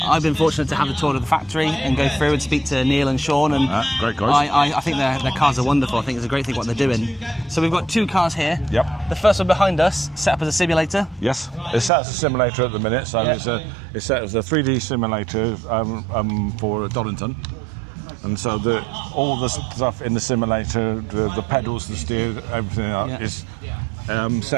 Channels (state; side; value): drops out; left; at 11.9 s